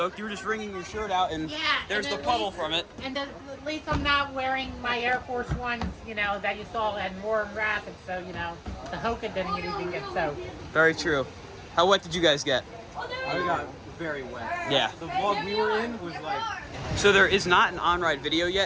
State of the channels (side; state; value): both; identical; correlation 1.00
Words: You were just wringing your shirt out and there's the puddle from it. And at least I'm not wearing my Air Force Ones, you know, that you saw had more rapid, so, you know, the Hoka didn't even get soaked. Very true. How wet did you guys get? I got very wet. Yeah. The vlog we were in was like... So there is not an on-ride video